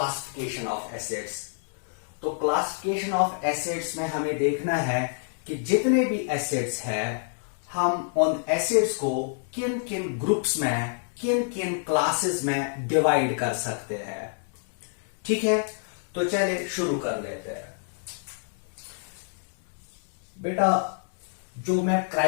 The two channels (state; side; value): silent; right; digital silence